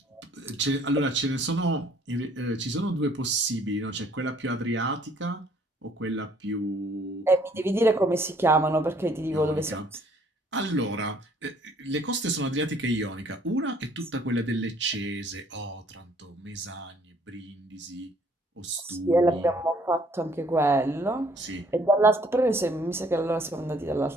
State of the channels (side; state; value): both; normal; correlation 0.61